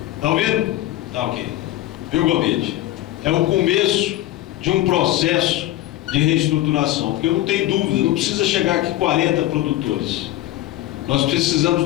Está ouvindo? Tá ok. Viu, Gomide? É o começo de um processo de reestruturação, porque eu não tenho dúvida, não precisa chegar aqui 40 produtores. Nós precisamos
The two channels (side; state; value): right; quieter; 15.3 dB